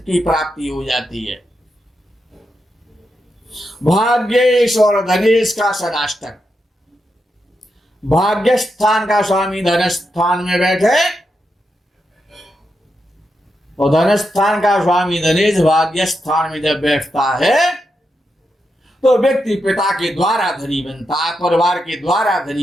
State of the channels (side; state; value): both; normal; correlation 0.85